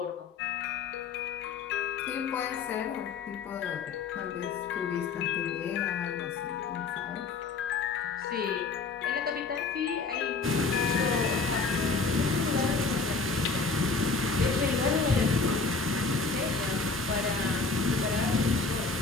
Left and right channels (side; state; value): right; quieter; 4.3 dB